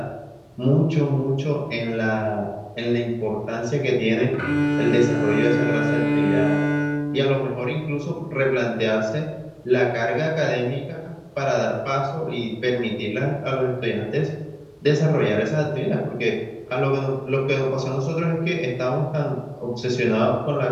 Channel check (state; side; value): identical; both; correlation 1.00